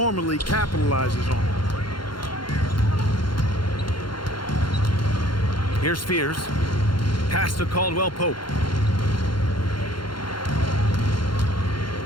capitalizes on. Here's Fears. Pass to Caldwell Pope.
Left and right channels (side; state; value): right; late; 0.72 ms